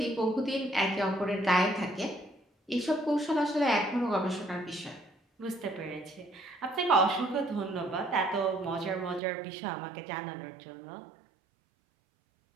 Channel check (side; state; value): left; drops out; at 9.2 s